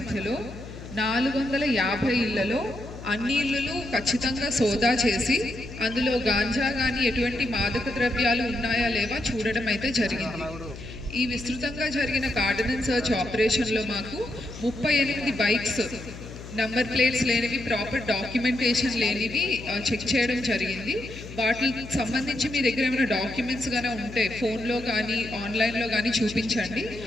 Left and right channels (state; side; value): noise; left; hum, 13 dB below the sound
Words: 450 ఇళ్లలో అన్ని ఇళ్లు ఖచ్చితంగా సోదా చేసి అందులో గాంజా కానీ ఎటువంటి మాదక ద్రవ్యాలు ఉన్నాయా లేవా చూడడం అయితే జరిగింది. ఈ విస్తృతంగా జరిగిన కార్డనెన్స్ సర్చ్ ఆపరేషన్లో మాకు 38 బైక్స్ నంబర్ ప్లేట్స్ లేనివి, ప్రాపర్ డాక్యుమెంటేషన్ లేనివి చెక్ చేయడం జరిగింది. వాటికి సంబంధించి మీ దగ్గర ఏమైనా డాక్యుమెంట్స్ కానీ ఉంటే ఫోన్లో కానీ ఆన్లైన్లో కానీ చూపించండి.